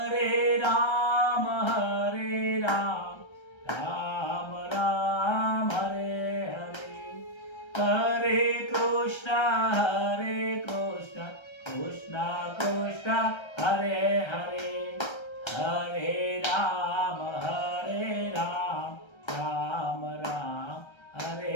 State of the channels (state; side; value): late; right; 1.3 ms